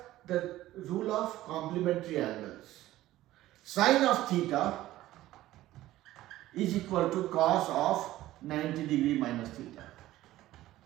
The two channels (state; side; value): quieter; left; 15.3 dB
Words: the rule of complementary angles. Sine of theta is equal to cos of 90 degree minus theta.